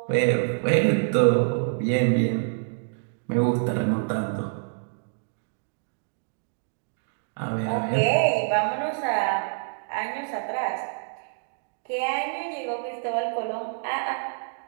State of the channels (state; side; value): silent; left; digital silence